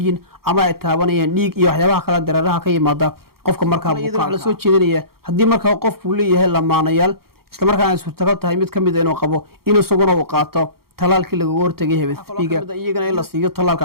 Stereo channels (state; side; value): late; left; 0.94 ms